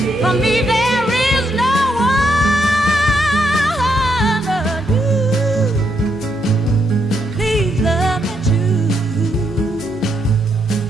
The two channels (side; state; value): both; normal; correlation 0.78